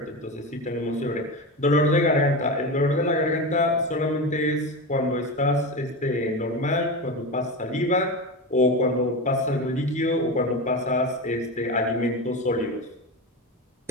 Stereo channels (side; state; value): both; normal; correlation 0.21